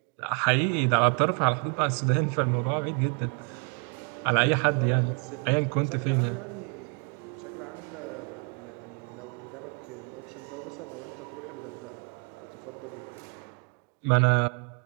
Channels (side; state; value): left; quieter; 37.7 dB